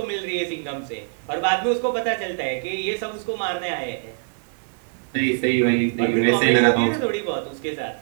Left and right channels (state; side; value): silent; left; digital silence